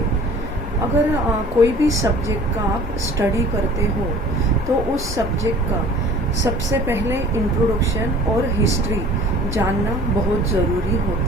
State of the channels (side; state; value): both; normal; correlation 0.47